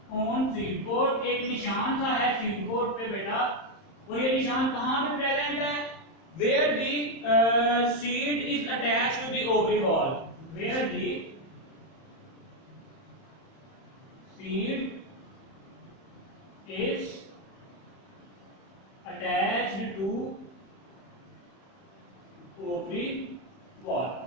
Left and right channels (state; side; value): late; right; 31 ms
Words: ऑन सीड कोट, एक निशान सा है सीड कोट पे बेटा, और ये निशान कहां पे प्रेजेंट है, where the seed is attached to the ovary wall, where the seed is attached to ovary wall.